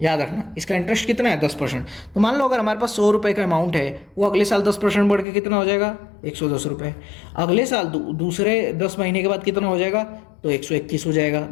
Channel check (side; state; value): right; drops out; at 5.2 s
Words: याद रखना, इसका इंटरेस्ट कितना है, 10%। तो मान लो अगर हमारे पास 100 रुपये का अमाउंट है, वो अगले साल 10% बढ़ के कितना हो जाएगा, 110 रुपये। अगले साल दूसरे 10 महीने के बाद कितना हो जाएगा, तो 121 हो जाएगा।